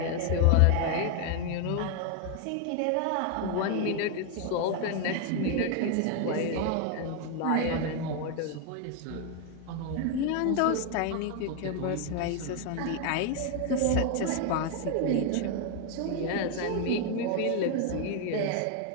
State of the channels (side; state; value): both; different; correlation 0.01